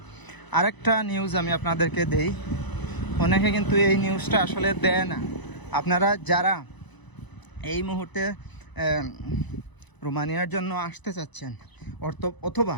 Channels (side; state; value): right; late; 1.0 ms